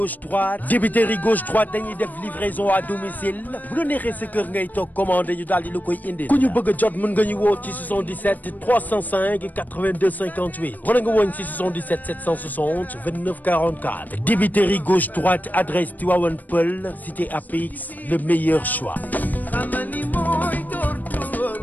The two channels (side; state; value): right; late; 0.083 ms